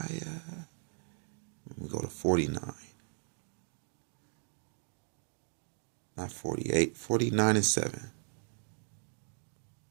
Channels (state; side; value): silent; left; digital silence